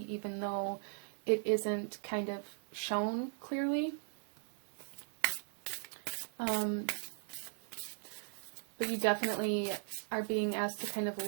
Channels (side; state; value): left; silent; digital silence